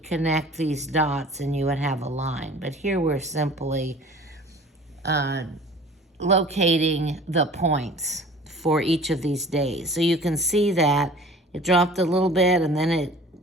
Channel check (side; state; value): both; normal; correlation 0.45